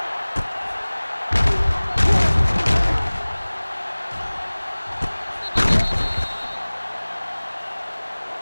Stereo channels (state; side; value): inverted; both; correlation -1.00